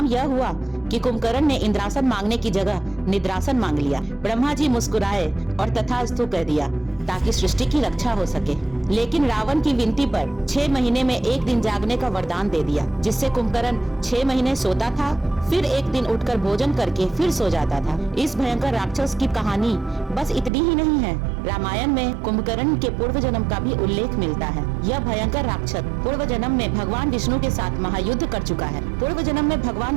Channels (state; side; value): drops out; left; at 20.5 s